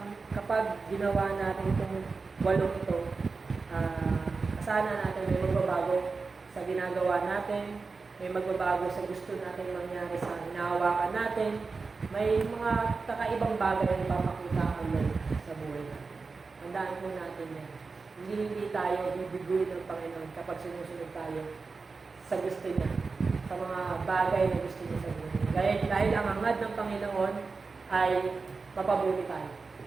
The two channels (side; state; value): left; quieter; 4.4 dB